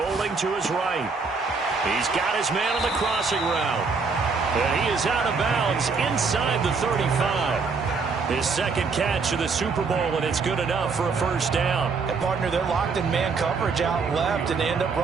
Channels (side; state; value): left; quieter; 4.8 dB